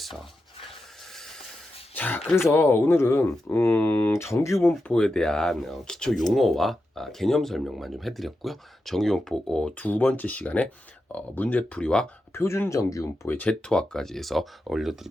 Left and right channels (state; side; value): normal; both; correlation 0.89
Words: 자, 그래서 오늘은 정규분포에 대한 기초 용어와 개념 설명만 좀 해드렸고요. 정규분포 두 번째 시간에 문제풀이와 표준 정규분포의 제토화까지 해서